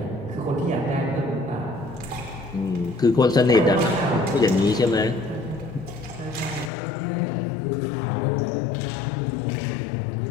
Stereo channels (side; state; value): right; drops out; at 6.7 s